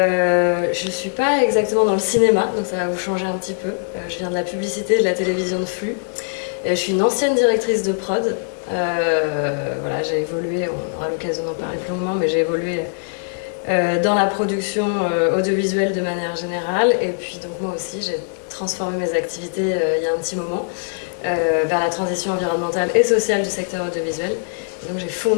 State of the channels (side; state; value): right; silent; 58 dB below the other